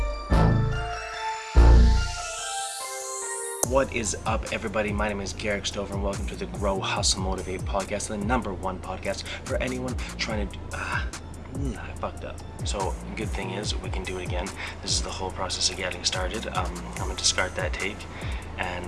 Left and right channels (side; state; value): both; identical; correlation 1.00